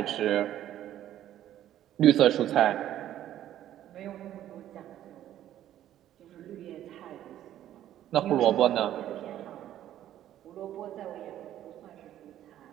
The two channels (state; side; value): quieter; left; 12.1 dB